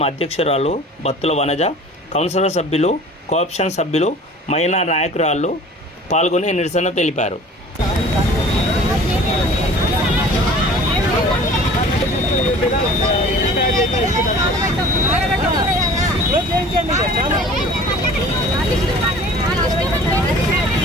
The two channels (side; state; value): both; normal; correlation 0.46